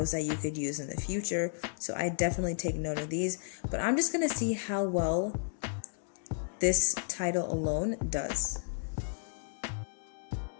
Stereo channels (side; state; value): right; silent; digital silence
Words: that you could use in the future. So I definitely take note of these, but I'm just going to see how well this title alone does.